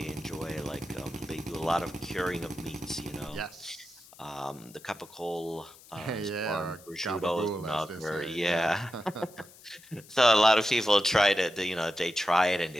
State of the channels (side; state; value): left; noise; hiss, 22 dB below the sound